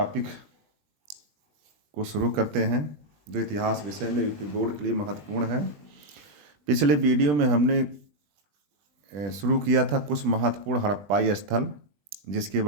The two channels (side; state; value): left; late; 20 ms